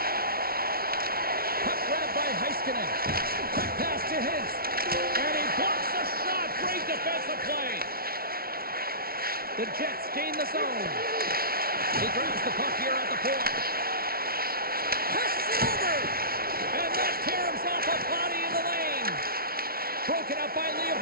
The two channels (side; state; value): left; late; 0.44 ms